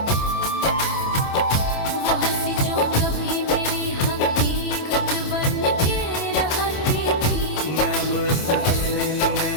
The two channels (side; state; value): right; late; 27 ms